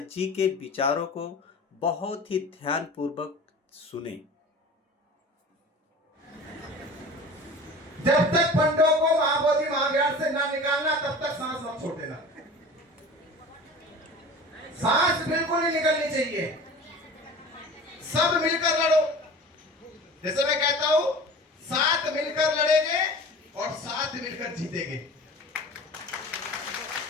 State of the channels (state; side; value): normal; both; correlation 0.38